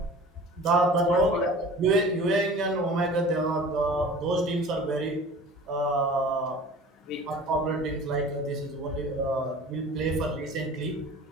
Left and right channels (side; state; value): both; normal; correlation 0.42